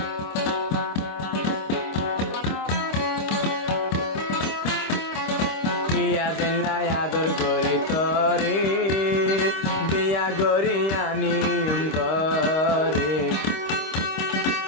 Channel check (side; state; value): right; late; 26 ms